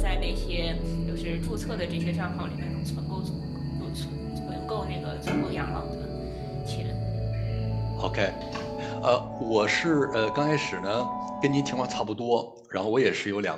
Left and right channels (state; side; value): identical; both; correlation 1.00